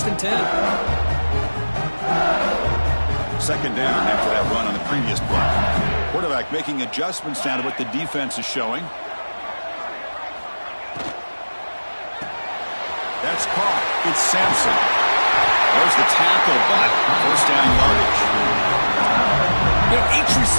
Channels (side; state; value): both; inverted; correlation -1.00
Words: and 10. Second down after that run on the previous play. Quarterback making adjustments down to what the defense is showing. That's caught. It's Sampson. There's the tackle, but first down yardage. You know, each